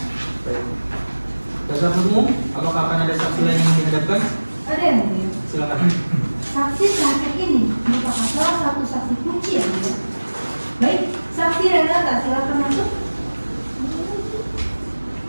Baik. Dasar umum, apakah akan ada saksi lain yang dihadapkan? Ada yang mulia. Silakan. Saksi terakhir ini merupakan salah satu saksi kunci yang mulia. Baik, saksi Renata silakan masuk.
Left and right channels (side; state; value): both; inverted; correlation -1.00